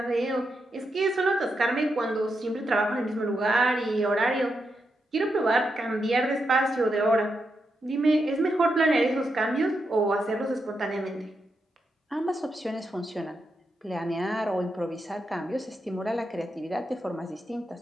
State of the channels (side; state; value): both; normal; correlation 0.84